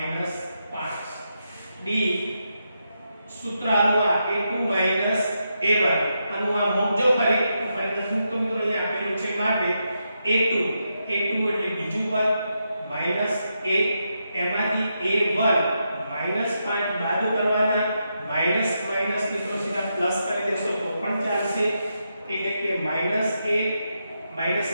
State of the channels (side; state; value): both; inverted; correlation -0.84